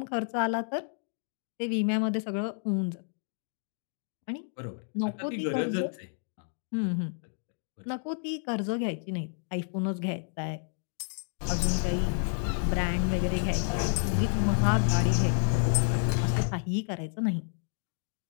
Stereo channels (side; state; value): right; silent; 58 dB below the other